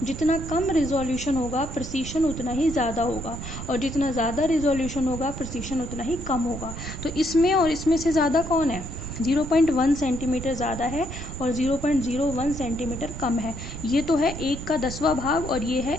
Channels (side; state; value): right; noise; rumble, 8 dB below the sound